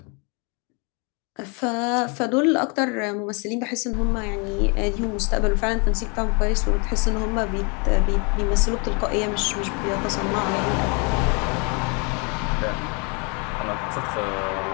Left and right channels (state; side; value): quieter; right; 33.4 dB